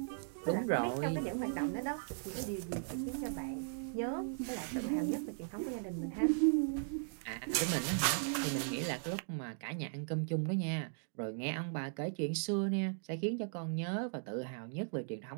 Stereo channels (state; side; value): silent; left; digital silence